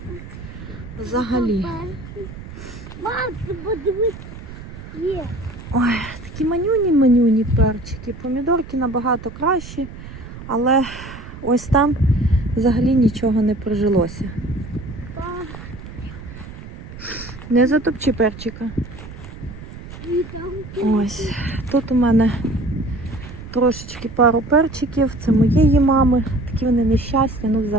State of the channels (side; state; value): right; noise; rumble, 13 dB below the sound